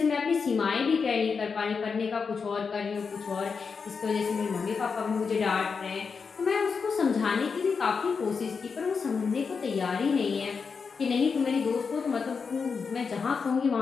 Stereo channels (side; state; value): right; quieter; 5.4 dB